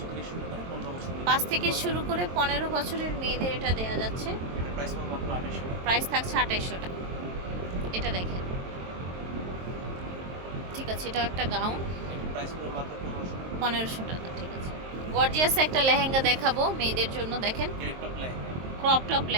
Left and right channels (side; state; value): left; late; 23 ms